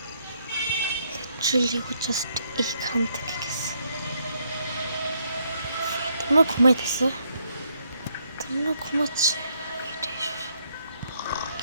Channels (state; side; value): inverted; both; correlation -0.73